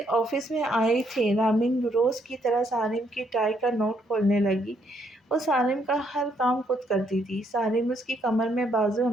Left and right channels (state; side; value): normal; both; correlation 0.72